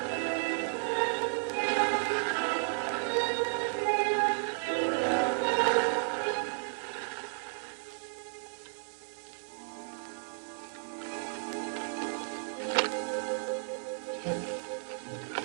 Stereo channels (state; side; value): silent; left; digital silence